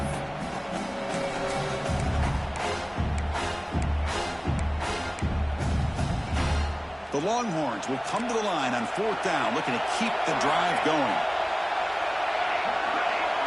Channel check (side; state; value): both; identical; correlation 1.00